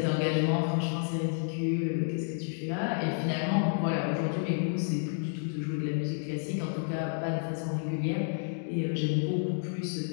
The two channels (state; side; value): silent; right; digital silence